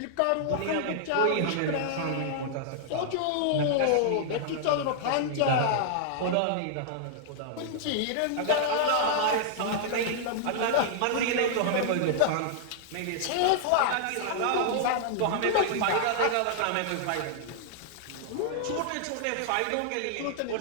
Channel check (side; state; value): both; different; correlation -0.01